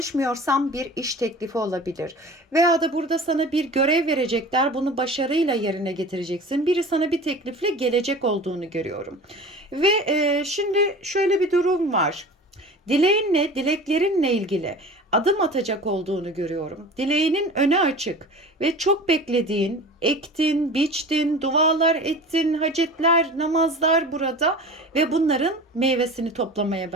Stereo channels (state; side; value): normal; both; correlation 0.38